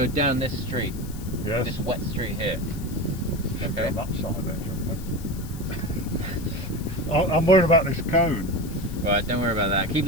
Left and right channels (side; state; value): left; noise; hiss, 18 dB below the sound